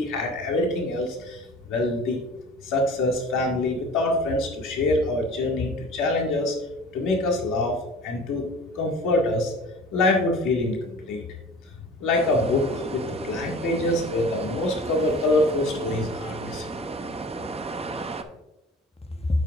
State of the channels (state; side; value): normal; both; correlation 0.42